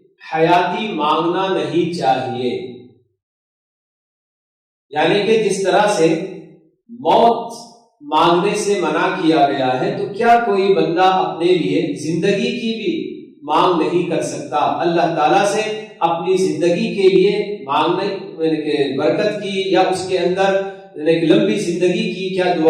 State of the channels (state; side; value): identical; both; correlation 1.00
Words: حیاتی مانگنا نہیں چاہیے؟ یعنی کہ جس طرح سے موت مانگنے سے منع کیا گیا ہے، تو کیا کوئی بندہ اپنے لیے زندگی کی بھی مانگ نہیں کر سکتا؟ اللہ تعالیٰ سے اپنی زندگی کے لیے مانگنے کے برکت کی یا اس کے اندر لمبی زندگی کی کیا